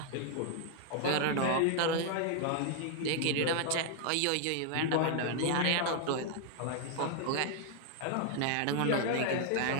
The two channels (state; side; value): different; both; correlation 0.00